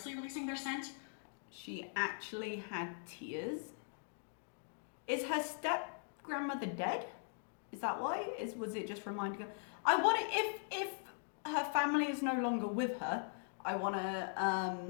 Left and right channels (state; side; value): silent; right; digital silence